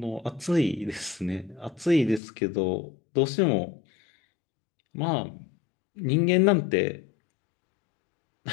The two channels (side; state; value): right; drops out; at 2.2 s